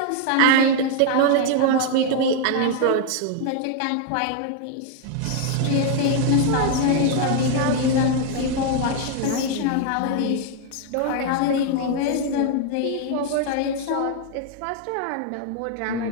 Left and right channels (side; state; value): both; different; correlation 0.00